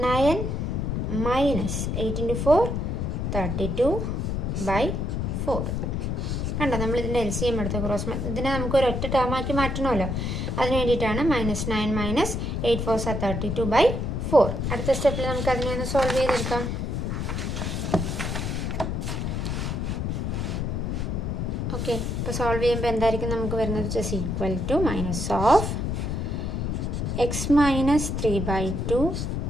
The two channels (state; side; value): noise; left; rumble, 1 dB below the sound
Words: - 8 × 4 32/4. കണ്ടോ, നമ്മളിതിൻ്റെ LCM എടുത്ത് ക്രോസ് ഇതിനെ നമുക്ക് ഒരു ഒറ്റ ടേമാക്കി മാറ്റണമല്ലോ. അതിന് വേണ്ടിയിട്ടാണ് -9 - 8 4 32/4. അടുത്ത സ്റ്റെപ്പിൽ നമുക്ക് അതിനെ ഒന്ന് സോൾവ് ചെയ്തെടുക്കാം. ഓക്കെ, ഇപ്പോൾ സോൾവ് ചെയ്യുമ്പോൾ എന്തായിരിക്കും നമുക്ക് വരുന്നത്? Just equal to -(x - 3/2